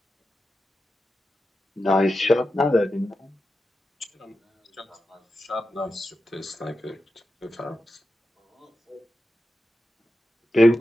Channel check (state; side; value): normal; both; correlation 0.90